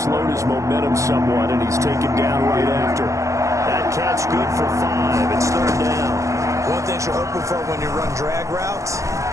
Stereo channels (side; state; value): left; late; 0.15 ms